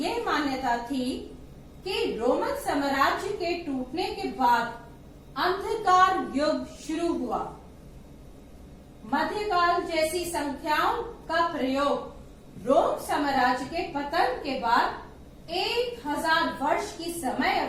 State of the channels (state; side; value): identical; both; correlation 1.00